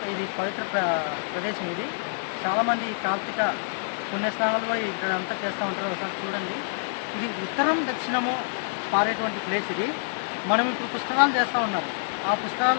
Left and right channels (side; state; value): right; silent; digital silence